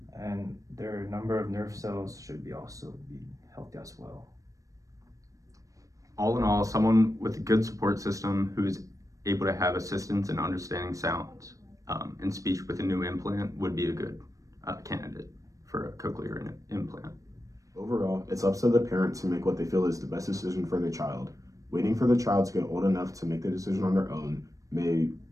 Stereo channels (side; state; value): left; late; 0.16 ms